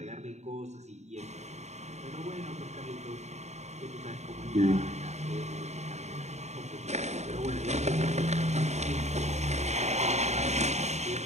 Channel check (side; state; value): left; late; 0.32 ms